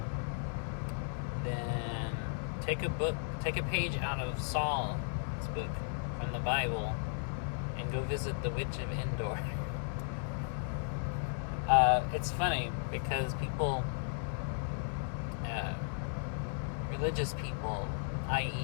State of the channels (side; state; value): right; silent; 54 dB below the other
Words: then take a page out of Saul's book from the Bible and go visit the Witch of Endor. It's funny because people, religious people,